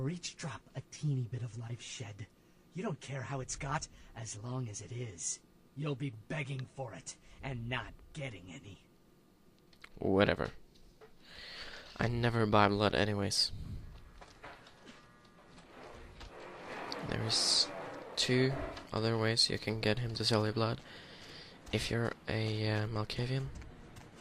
each drop, a teeny bit of life shed. You don't care how it's got, as long as it is. You'll be begging for it, and not getting any. Whatever. I never buy blood anyways. There's 2 other ways you can get him to sell your blood. If you're a Malkavian,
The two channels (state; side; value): identical; both; correlation 1.00